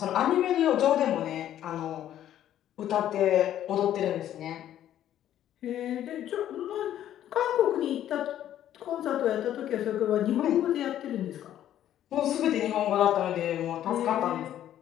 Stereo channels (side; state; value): right; quieter; 11.5 dB